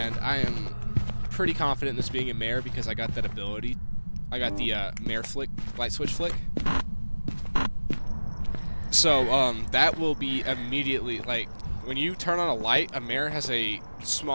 I am pretty confident in this being a Mare because I got that ability. I got the Mare flick, light switch flick. So that will be immediately, like, when you turn on a light, a Mare has a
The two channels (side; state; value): both; inverted; correlation -1.00